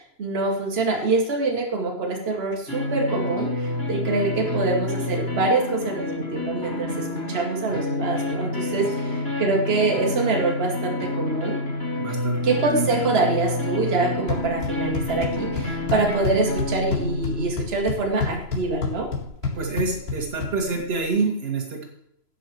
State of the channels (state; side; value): late; left; 3.0 ms